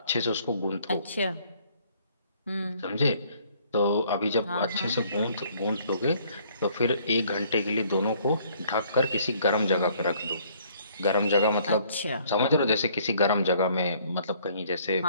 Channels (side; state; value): both; inverted; correlation -0.61